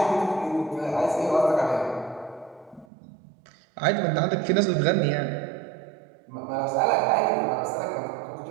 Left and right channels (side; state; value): left; drops out; at 2.9 s